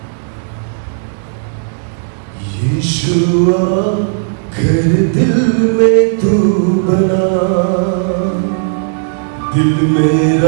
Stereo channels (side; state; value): left; silent; digital silence